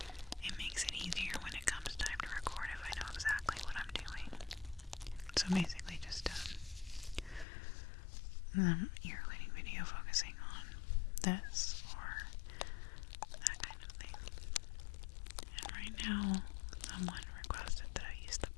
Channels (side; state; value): right; drops out; at 7.5 s